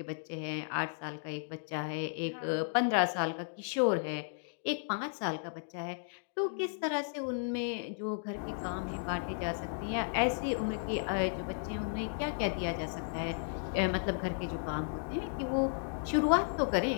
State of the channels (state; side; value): silent; right; digital silence